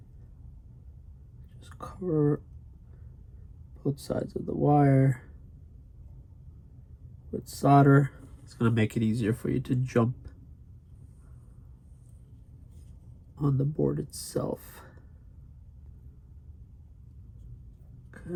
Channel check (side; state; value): both; identical; correlation 1.00